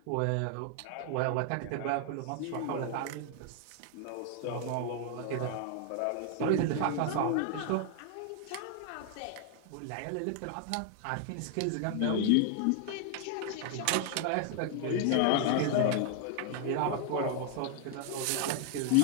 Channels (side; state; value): both; different; correlation 0.00